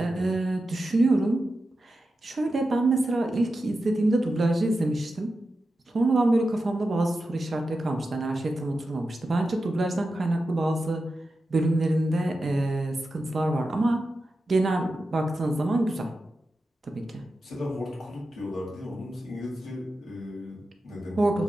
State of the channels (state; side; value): normal; both; correlation 0.91